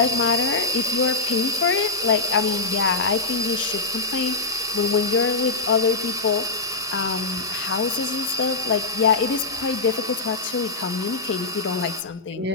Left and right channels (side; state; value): right; quieter; 3.6 dB